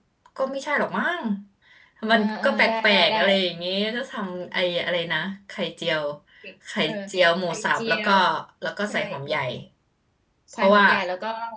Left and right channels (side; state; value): both; identical; correlation 1.00